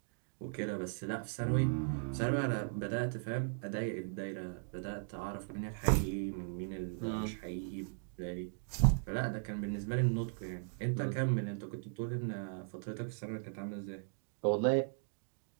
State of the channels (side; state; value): left; silent; digital silence